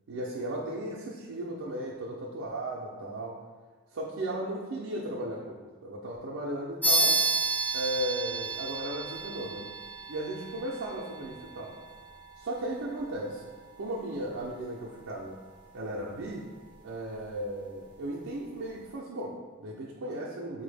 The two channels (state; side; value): normal; both; correlation 0.02